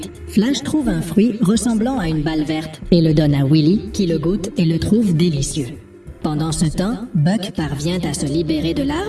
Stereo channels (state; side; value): identical; both; correlation 1.00